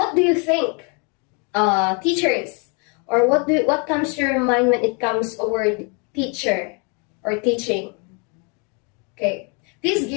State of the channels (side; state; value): right; quieter; 34.8 dB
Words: do you think, teachers, or what comes to your mind when it comes a word teacher or teaching? Okay, please